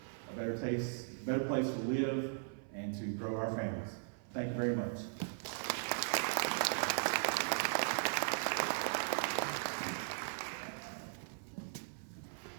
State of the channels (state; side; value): silent; left; 52 dB below the other